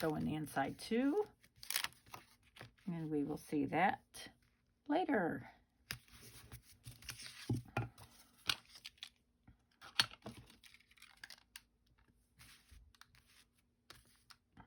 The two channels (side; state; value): both; identical; correlation 1.00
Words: in the inside too. And we will see that later.